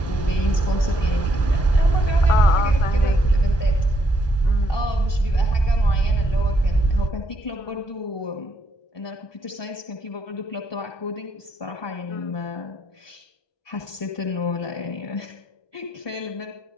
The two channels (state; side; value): late; right; 1.2 ms